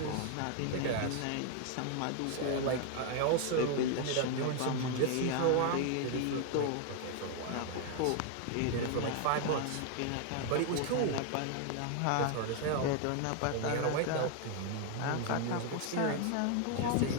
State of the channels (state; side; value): different; both; correlation 0.00